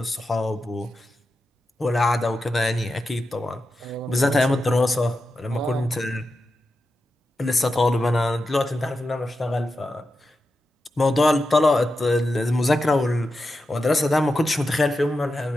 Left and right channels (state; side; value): normal; both; correlation 0.90